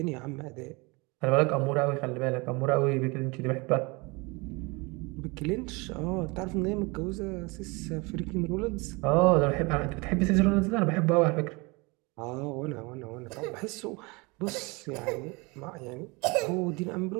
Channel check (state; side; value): quieter; left; 26.8 dB